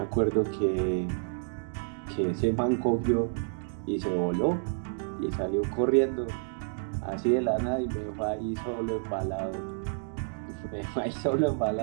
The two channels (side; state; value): left; silent; digital silence